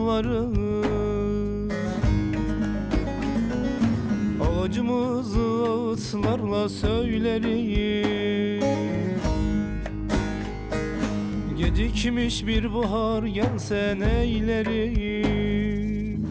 acımızı ağıtlarla söylerim. Gecikmiş bir bahar gelse neylerim.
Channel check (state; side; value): identical; both; correlation 1.00